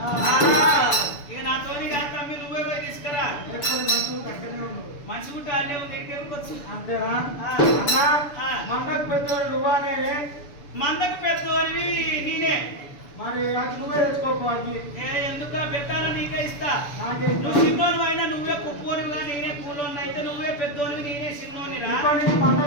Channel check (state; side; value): late; right; 6.9 ms